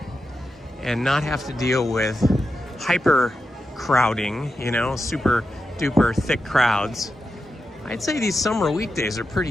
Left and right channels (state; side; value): normal; both; correlation 0.88